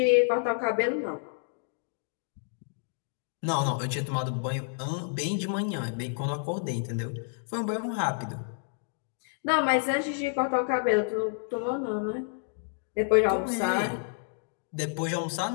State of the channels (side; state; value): right; silent; digital silence